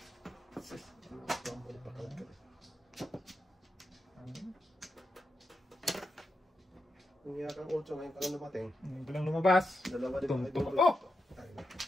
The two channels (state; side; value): normal; both; correlation 0.86